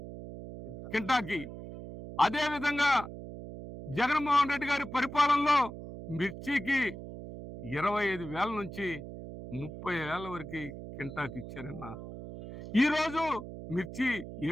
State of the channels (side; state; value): right; noise; hum, 11 dB below the sound